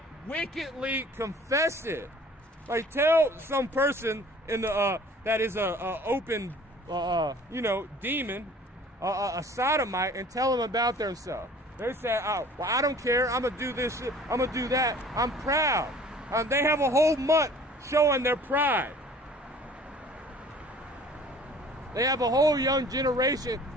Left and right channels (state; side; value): normal; both; correlation 0.49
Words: wickedly confess it. Like, tell some person in the that is a open demon, a sodomite, and tell them about themselves. They say, oh, well, I don't care. I'm gonna do this shit. I'm gonna do that. I'm proud. They have a whole month showing their pride. They have a whole young generation.